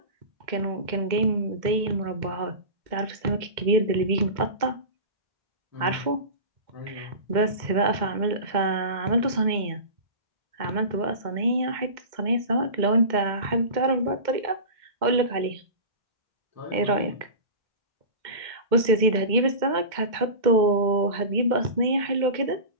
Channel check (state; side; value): late; left; 2.1 ms